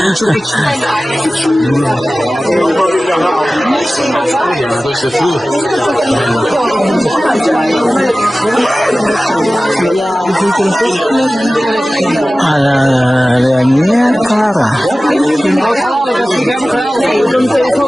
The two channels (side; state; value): both; normal; correlation 0.96